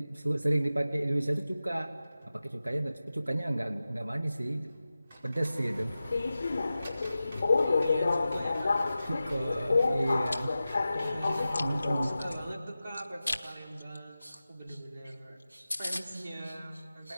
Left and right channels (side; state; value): both; inverted; correlation -0.94